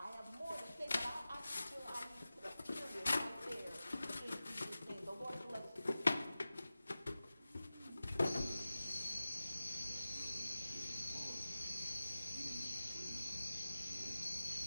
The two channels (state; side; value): inverted; both; correlation -0.95